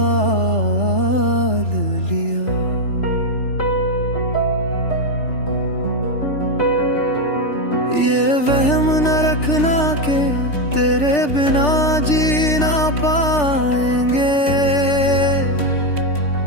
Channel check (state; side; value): late; right; 3.4 ms